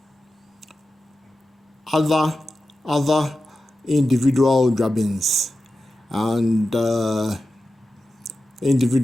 Other individual Juabens and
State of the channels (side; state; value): both; normal; correlation 0.92